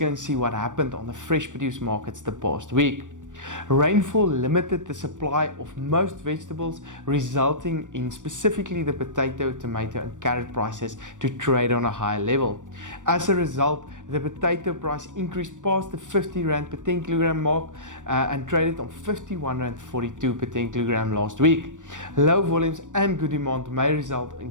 and see what happened on the fresh produce markets the past week. Rainfall limited the supply of most vegetables, resulting in specifically the potato, tomato and carrot prices to trade on a higher level. As a result, the potato price increased past the 50 Rand per 10 kilogram mark and traded on 51 Rand 42 per 10 kilogram last week. Low volumes and good demand may result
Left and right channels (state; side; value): late; left; 0.87 ms